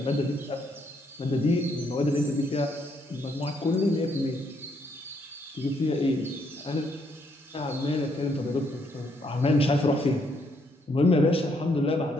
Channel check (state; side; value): normal; both; correlation 0.73